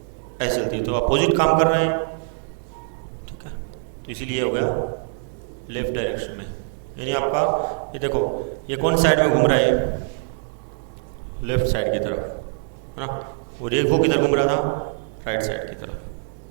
ऐसे चलती है, तो अपोजिट काम कर रहे हैं, ठीक है। तो इसीलिए हो गया लेफ्ट डायरेक्शन में। यानी आपका ये देखो, ये कौन साइड में घूम रहा है, लेफ्ट साइड की तरफ, है ना। और ये वो किधर घूम रहा था, राइट साइड की तरफ।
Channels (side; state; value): left; silent; digital silence